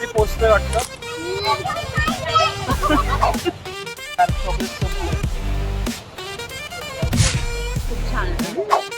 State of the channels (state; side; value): identical; both; correlation 1.00